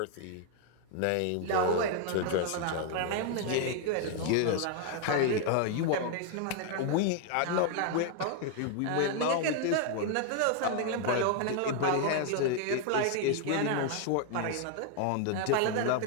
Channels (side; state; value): both; different; correlation 0.00